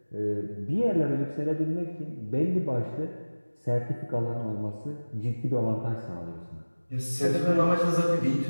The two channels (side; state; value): both; inverted; correlation -1.00